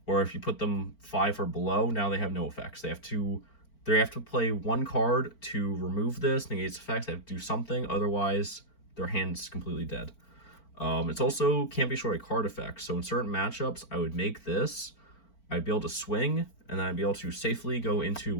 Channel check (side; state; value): right; late; 4.4 ms